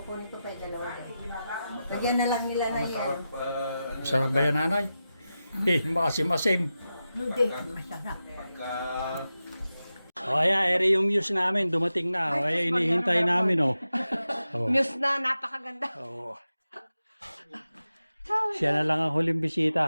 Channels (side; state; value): both; inverted; correlation -0.92